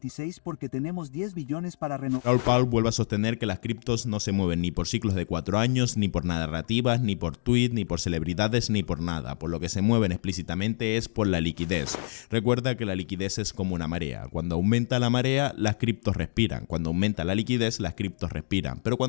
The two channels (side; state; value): right; silent; digital silence